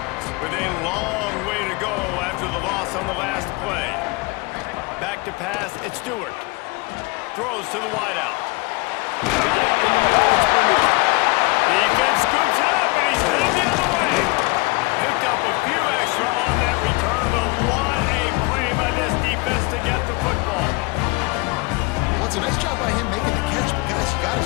with a long way to go after the loss on the last play. Back to pass, it's Stewart. Throws to the wideout. Got it in the middle, it's Bernard. Defense scoops it up, and he's headed the other way. Picked up a few extra on that return, but what a play by this defense to get the football. Well, it's a nice job by him making the catch, but guys, you got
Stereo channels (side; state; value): right; quieter; 26.8 dB